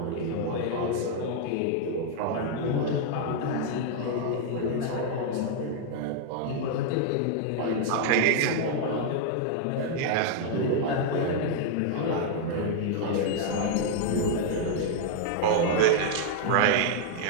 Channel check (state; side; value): different; both; correlation -0.01